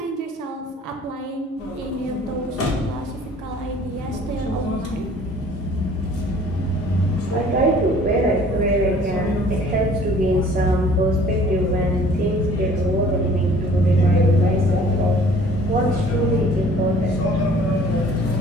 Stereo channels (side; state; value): both; normal; correlation 0.52